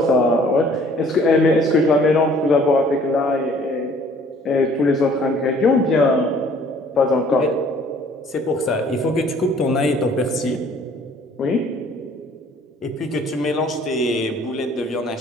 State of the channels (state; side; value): normal; both; correlation 0.56